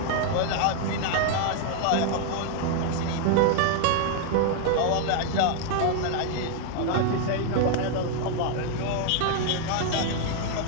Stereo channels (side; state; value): both; different; correlation 0.00